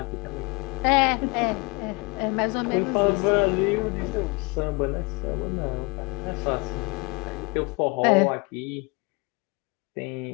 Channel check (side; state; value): right; quieter; 28.2 dB